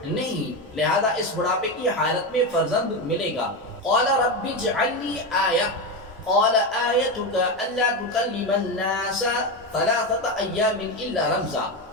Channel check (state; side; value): normal; both; correlation 0.15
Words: نہیں، لہذا اس بڑھاپے کی حالت میں فرزند ملے گا۔ قال رب اجعل لي آیہ قال آیتک الا تکلم الناس ثلاثة ایام الا رمزا